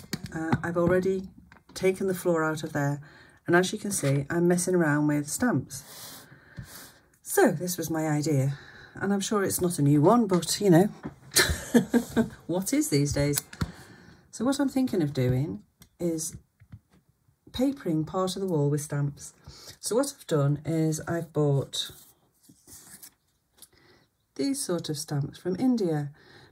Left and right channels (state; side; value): identical; both; correlation 1.00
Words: I've already taken the floor out of there, and as you can see, I'm messing around with stamps. So this was my idea, and I'm sure it's not a new one, but you know, what is these days? So what I'm thinking of doing is papering part of the wall with stamps. So what I've done is I've bought these sort of stamps from India,